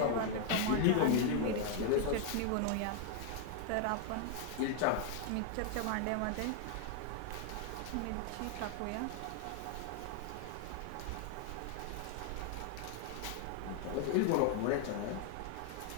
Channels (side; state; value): both; different; correlation 0.00